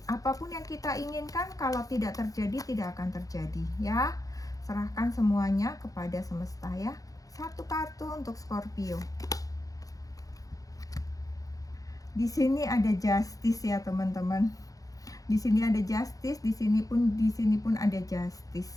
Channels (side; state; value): right; late; 0.17 ms